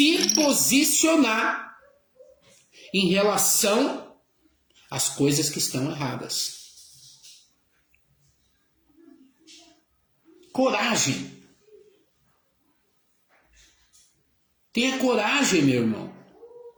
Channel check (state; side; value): identical; both; correlation 1.00